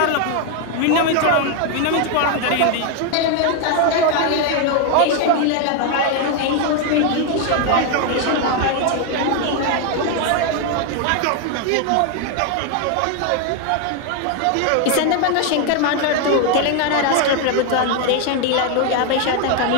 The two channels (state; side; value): different; both; correlation 0.01